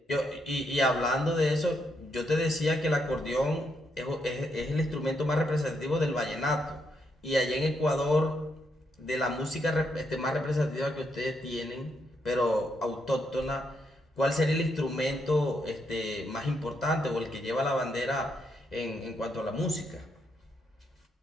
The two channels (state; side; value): normal; both; correlation 0.78